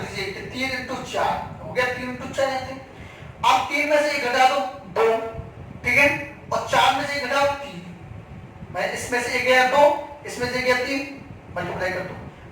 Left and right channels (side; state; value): both; identical; correlation 1.00